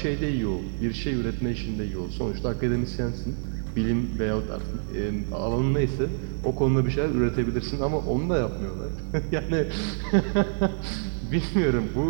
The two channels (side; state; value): left; silent; digital silence